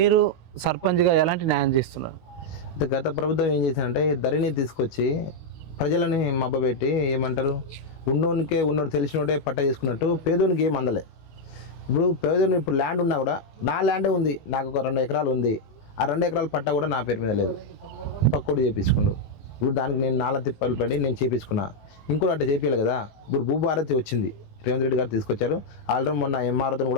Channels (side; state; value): right; late; 19 ms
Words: సర్పంచ్గా ఎలాంటి న్యాయం చేస్తున్నారు? అయితే గత ప్రభుత్వం ఏం చేసిందంటే ధరణి తీసుకొచ్చి ప్రజలని మబ్బబెట్టి ఏమంటారు, ఉన్నోడు తెలిసినోడే పట్ట చేసుకున్నట్టు పేదోనికి ఏం అందలే. ఇప్పుడు ల్యాండ్ ఉన్నా కూడా నా ల్యాండే ఉంది, నాకు ఒక 2 ఎకరాలు ఉంది, ఆ 2 ఎకరాల పట్ట కూడా నా పేరు మీద లేదు, పక్కోడు చేయించుకుండు. ఇప్పుడు దానికి నేను 4 తిప్పలు పడి నేను చేయించుకున్నా, ఇంకోటి అట్లా చేయించాలి కదా. ఇప్పుడు భూభారతి వచ్చింది, రేవంత్ రెడ్డి గారు తీసుకొచ్చారు. ఆల్రెడీ మొన్న ఎంఆర్ఓతో